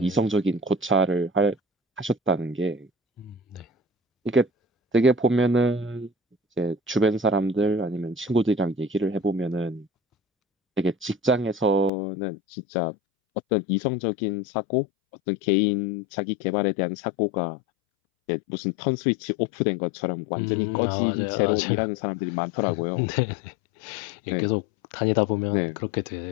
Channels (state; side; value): drops out; right; at 11.9 s